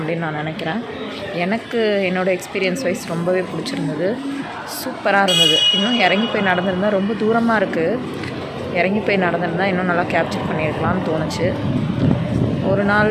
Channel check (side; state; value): both; identical; correlation 1.00